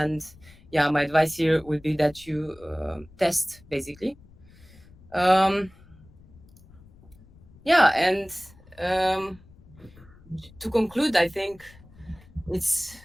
yeah, my advice here would be that you test basically. Um, yeah, and um, to conclude, I think it's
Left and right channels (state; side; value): noise; left; rumble, 24 dB below the sound